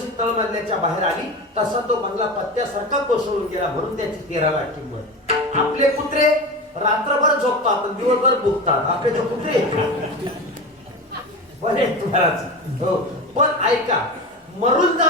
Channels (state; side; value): normal; both; correlation 0.26